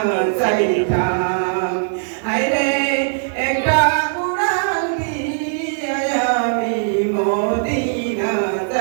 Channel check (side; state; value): left; silent; digital silence